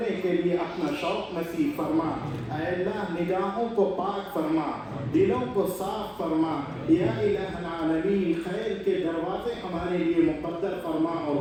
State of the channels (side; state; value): both; identical; correlation 1.00